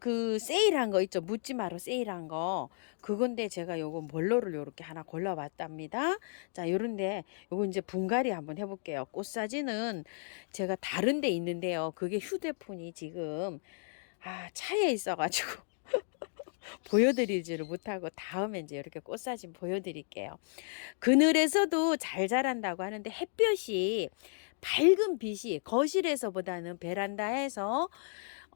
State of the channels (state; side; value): silent; right; digital silence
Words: 세일한 거 있죠. 묻지마로 세일한 거. 그건데 제가 요거 몰로를 요렇게 하나 골라봤답니다. 자, 요런데 요거 이제 분갈이 한번 해볼게요. 꽃 사진은 제가 다른 데 있는데요. 그게 휴대폰이 지금 차에 있어가지고 보여드리지를 못하고 다음에 이제 이렇게 꽃사진 보여드릴게요. 그늘에서도 잘 자란다고 하는데 햇볕이 밝은 빛이 거실에서보다는 베란다에서